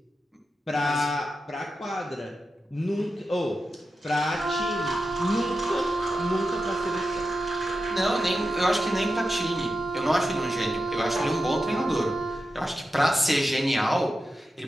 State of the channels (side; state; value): both; normal; correlation 0.90